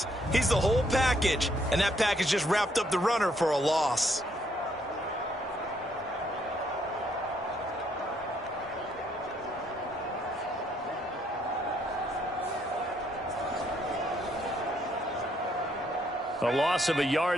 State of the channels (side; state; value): both; normal; correlation 0.70